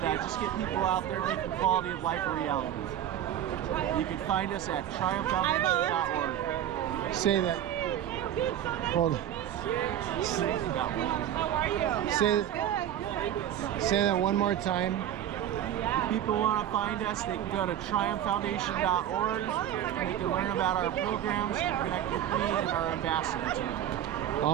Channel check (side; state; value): left; quieter; 11.0 dB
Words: just get people out there making quality of life a reality. You can find us at triumphfoundation.org. Say that. Hold on. How are you? Say that one more time. If people want to find us, they can go to triumphfoundation.org and they can learn about our programs and connect with me and our ambassador team.